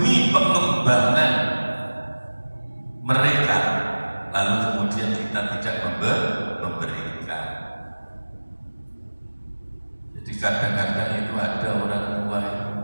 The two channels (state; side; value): inverted; both; correlation -1.00